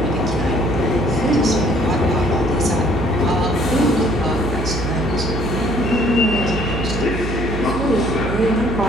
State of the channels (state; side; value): noise; right; hum, 5 dB below the sound